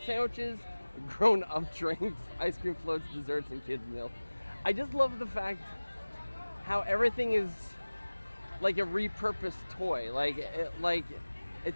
sandwiches, grown-up drinks, ice cream floats, desserts, and kids' meals. I just love the fact how everything is like a repurposed toy. Like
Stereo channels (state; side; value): inverted; both; correlation -1.00